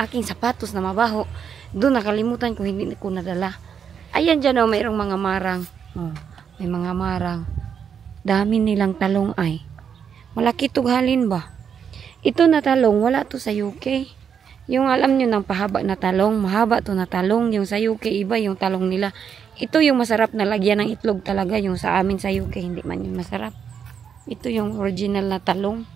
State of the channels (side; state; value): left; quieter; 7.4 dB